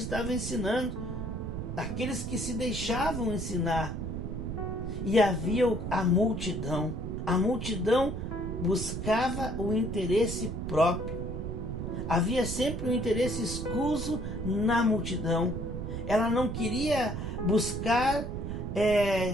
ensinando. Aqueles que se deixavam ensinar. E havia a multidão. A multidão buscava o interesse próprio. Havia sempre um interesse escuso na multidão. Ela não queria buscar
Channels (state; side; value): noise; right; rumble, 5 dB below the sound